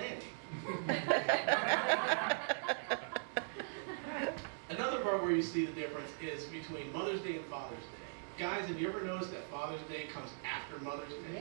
Another part where you see the difference is between Mother's Day and Father's Day. Guys, have you ever noticed that Father's Day comes after Mother's Day?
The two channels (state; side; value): silent; left; digital silence